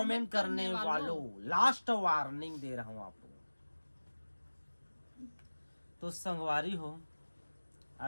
करने वालों, लास्ट वार्निंग दे रहा हूं आपको। तो संगवारी हो,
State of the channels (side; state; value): both; inverted; correlation -1.00